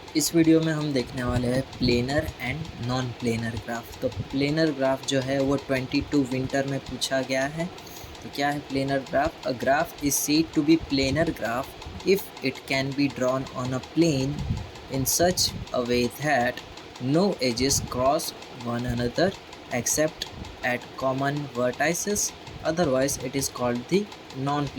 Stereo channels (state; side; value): identical; both; correlation 1.00